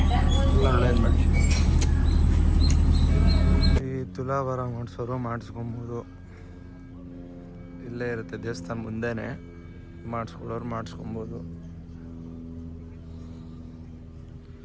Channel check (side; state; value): both; identical; correlation 1.00